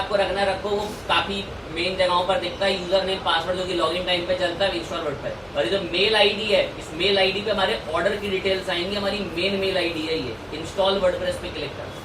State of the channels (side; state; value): both; identical; correlation 1.00